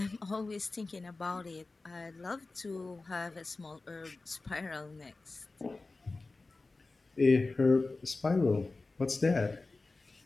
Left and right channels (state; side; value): quieter; right; 3.5 dB